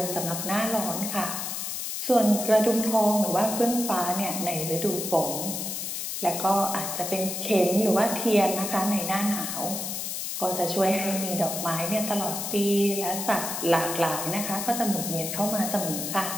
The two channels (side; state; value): left; noise; hiss, 4 dB below the sound